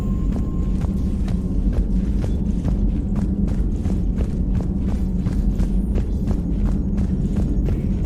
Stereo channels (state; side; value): identical; both; correlation 1.00